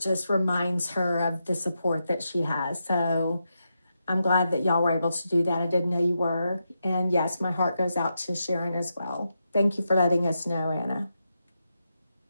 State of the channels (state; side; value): inverted; both; correlation -0.86